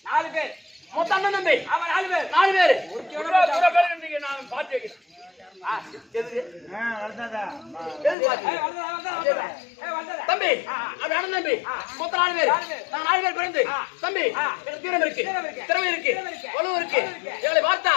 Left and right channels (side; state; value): right; drops out; at 8.2 s